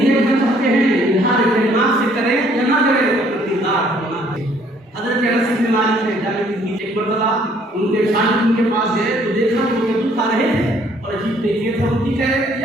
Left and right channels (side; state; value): both; normal; correlation 0.62